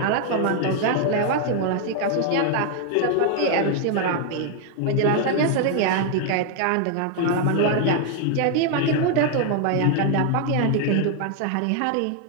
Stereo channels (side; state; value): both; different; correlation 0.00